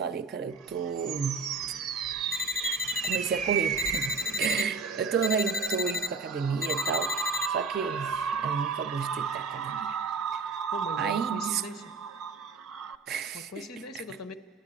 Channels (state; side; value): quieter; left; 4.4 dB